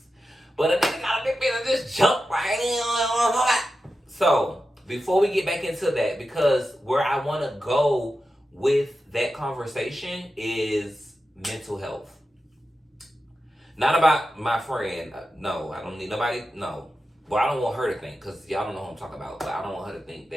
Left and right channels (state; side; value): normal; both; correlation 0.91